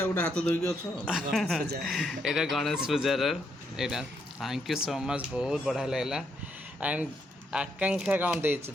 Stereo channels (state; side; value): normal; both; correlation 0.76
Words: गोटे हाथ धोइकी अछ एटा गणेश पूजार एटा थैंक यू सो मच बहुत बढ़िया लगला एंड आकांक्षा कौन देछि